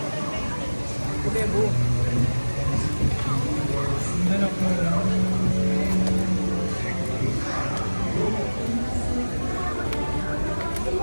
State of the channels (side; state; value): both; inverted; correlation -1.00